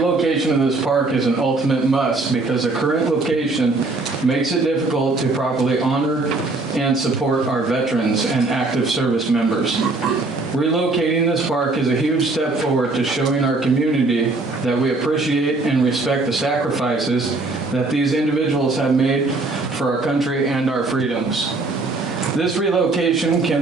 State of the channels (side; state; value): left; quieter; 3.4 dB